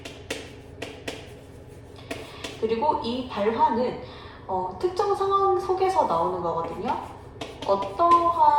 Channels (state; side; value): identical; both; correlation 1.00